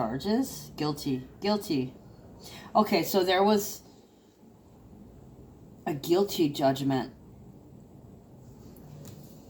Guilty. Okay, so there was a guilty judgment.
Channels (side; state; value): both; identical; correlation 1.00